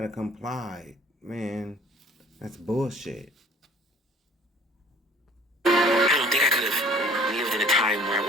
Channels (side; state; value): both; normal; correlation 0.52